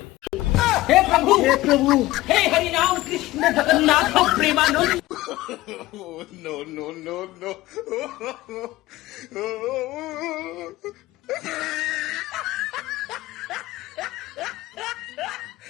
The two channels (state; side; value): quieter; right; 17.8 dB